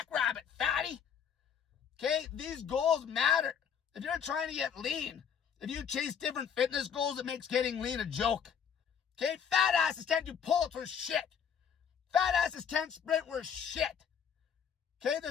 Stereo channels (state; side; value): quieter; right; 7.6 dB